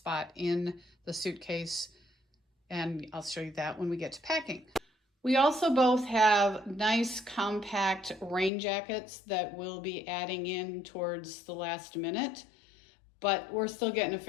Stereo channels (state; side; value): drops out; right; at 8.5 s